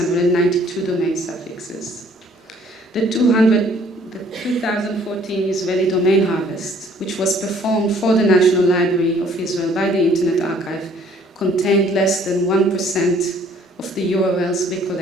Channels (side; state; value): both; normal; correlation 0.59